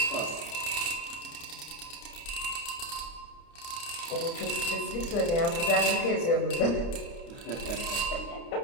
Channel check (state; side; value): late; right; 29 ms